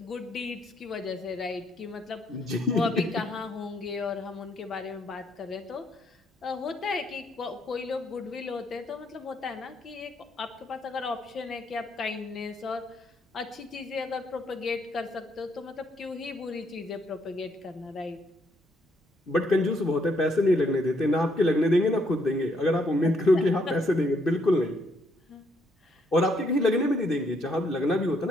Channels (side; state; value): both; normal; correlation 0.72